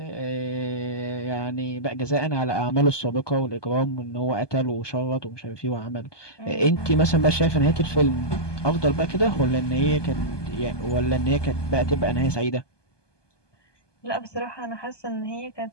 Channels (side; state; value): right; late; 1.2 ms